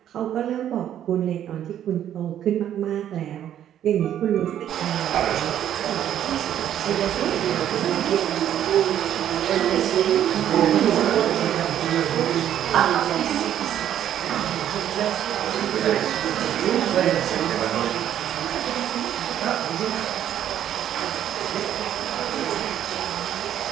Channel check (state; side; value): quieter; left; 10.7 dB